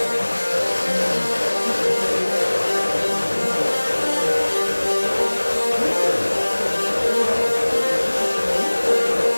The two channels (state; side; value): inverted; both; correlation -1.00